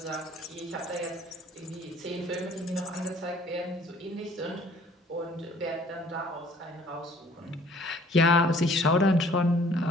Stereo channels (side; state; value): both; normal; correlation 0.55